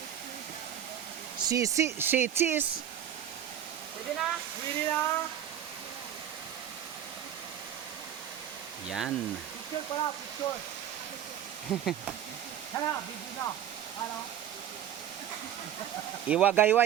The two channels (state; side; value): quieter; left; 10.2 dB